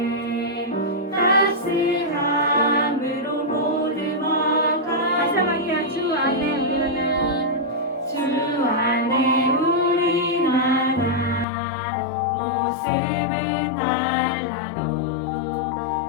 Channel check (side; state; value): right; drops out; at 11.5 s